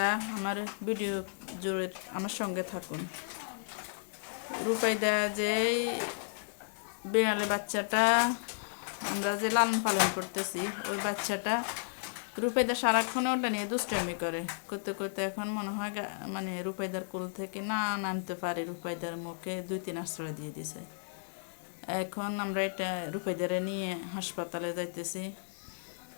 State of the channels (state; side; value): silent; right; digital silence